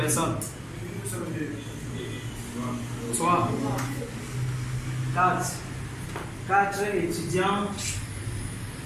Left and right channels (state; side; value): identical; both; correlation 1.00